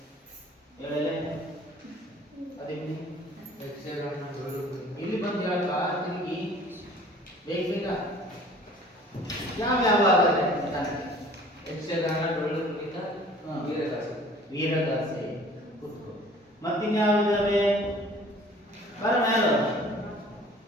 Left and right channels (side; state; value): both; normal; correlation 0.50